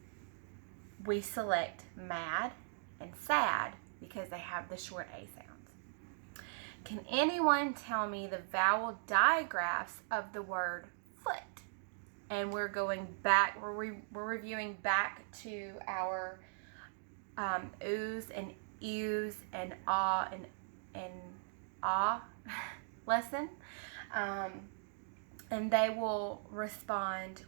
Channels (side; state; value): left; silent; digital silence